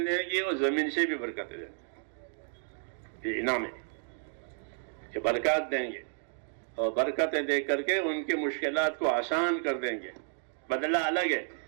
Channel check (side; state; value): left; silent; digital silence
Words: گے اور زمین سے بھی برکتیں دیں گے۔ یہ انعام ہے کہ برکات دیں گے، اور برکتیں دے کر کے ان کی مشکلات کو آسان کر دیں گے۔ بدلہ الگ ہے،